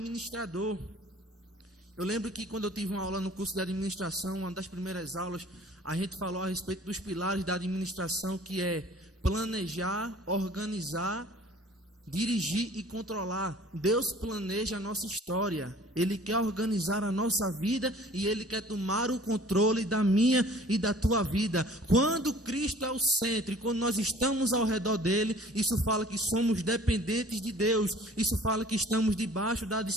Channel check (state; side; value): normal; both; correlation 0.50